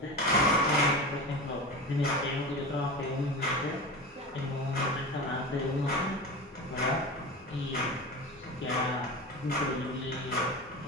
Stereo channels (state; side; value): normal; both; correlation 0.28